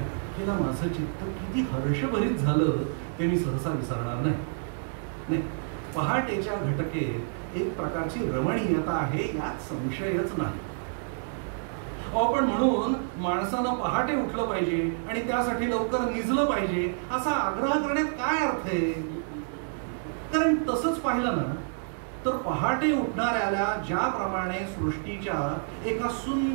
घटकेला माझं चित्त किती हर्षभरीत झालं ते मी सहसा विसरणार नाही. पहाटेच्या घटकेत एक प्रकारची रमणीयता आहे यात संशयच नाही. पण म्हणून माणसानं पहाटे उठलं पाहिजे आणि त्यासाठी लवकर निजलं पाहिजे असा आग्रह करण्यात काय अर्थ आहे? कारण तसंच पाहिलं ना तर पहाटे उठणाऱ्याला ज्याप्रमाणे सृष्टीच्या एका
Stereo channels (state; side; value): silent; left; digital silence